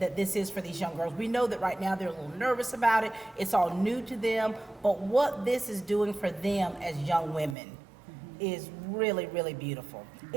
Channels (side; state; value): left; drops out; at 7.6 s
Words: this is for these young girls. We know that right now they're a little nervous about it. It's all new to them. But what this is doing for them as young women is really, really beautiful.